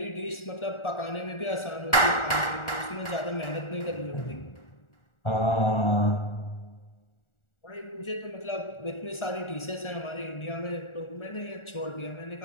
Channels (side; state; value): right; late; 1.4 ms